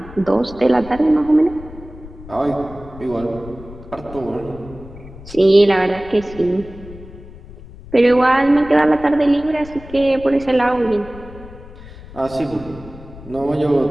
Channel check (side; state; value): left; noise; rumble, 17 dB below the sound